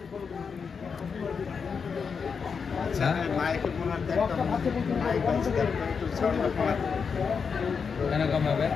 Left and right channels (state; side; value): quieter; right; 5.9 dB